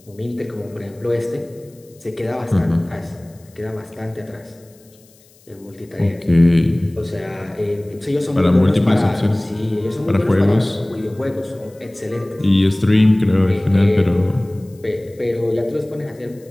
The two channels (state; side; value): noise; left; hiss, 29 dB below the sound